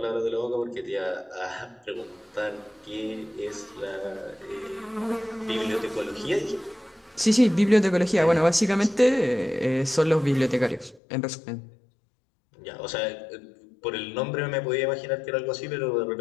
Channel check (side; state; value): right; drops out; at 11.0 s